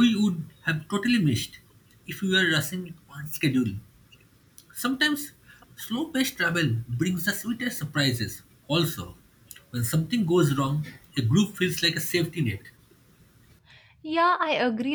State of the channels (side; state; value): both; identical; correlation 1.00